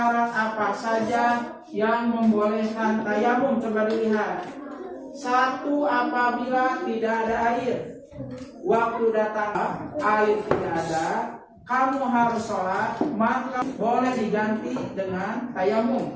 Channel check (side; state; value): both; identical; correlation 1.00